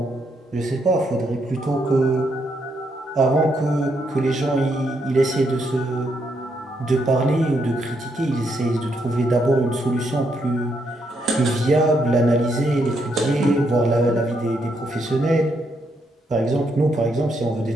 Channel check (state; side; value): normal; both; correlation 0.77